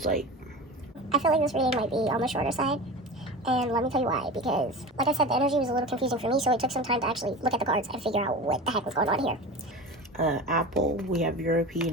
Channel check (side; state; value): both; normal; correlation 0.31